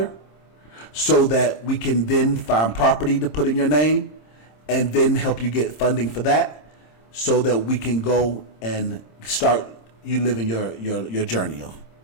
so that we can then find property to put in your name, and then help you get funding for that, so that we can go and start you living your journey.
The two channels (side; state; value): right; late; 26 ms